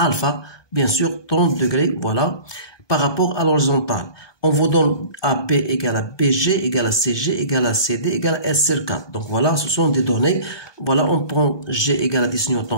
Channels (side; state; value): right; late; 1.2 ms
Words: bien sûr 30 degrés, voilà, par rapport à l'horizontale. On vous donne AB égale à BG égale à CG égale à CD égale à S sur 4. Donc voilà, ce sont des données. Voilà, on prend G égale à 10